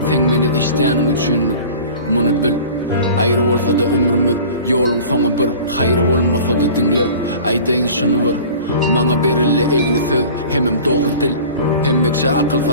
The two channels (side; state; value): both; inverted; correlation -0.41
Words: sen meni eşdäniň üçin muny bil. Aýry bolsa da ömrümiz ýoluň soňy bir, haýry bolmasa da dinle, aýdaýyn şunu bir. Maňa berilli egri söz, hemem dogry dil, hemmekçe akyl